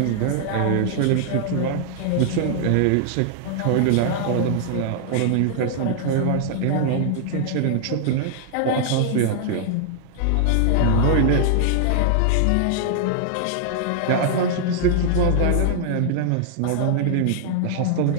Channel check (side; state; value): both; different; correlation -0.01